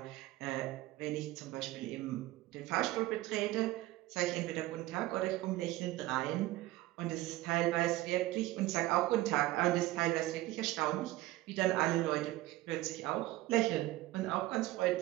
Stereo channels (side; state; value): left; quieter; 17.1 dB